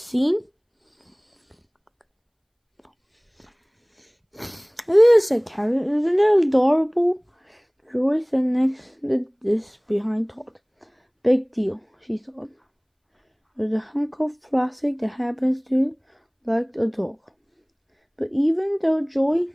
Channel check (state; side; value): identical; both; correlation 1.00